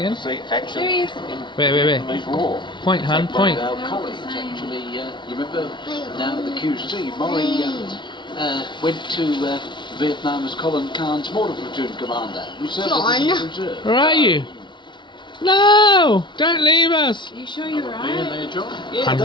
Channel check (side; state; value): right; late; 0.23 ms